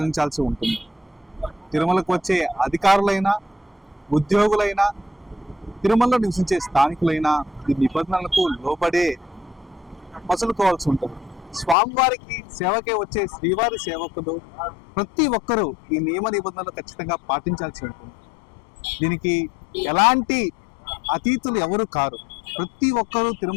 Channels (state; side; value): drops out; right; at 11.8 s